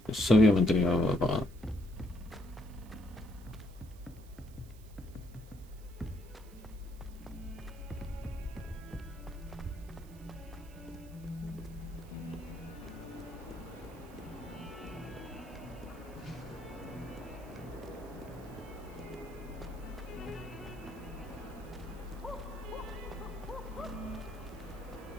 se había mantenido apagada.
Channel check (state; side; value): noise; right; hiss, 23 dB below the sound